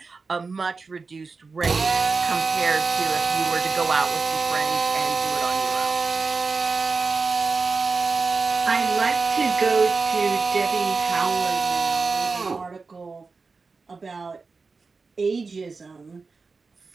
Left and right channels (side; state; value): left; quieter; 4.4 dB